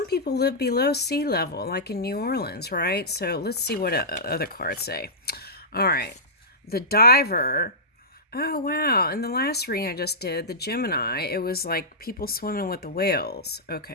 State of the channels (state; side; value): normal; both; correlation -0.15